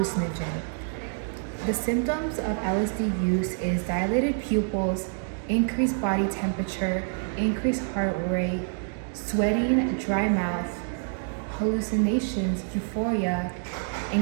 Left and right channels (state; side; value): silent; left; 60 dB below the other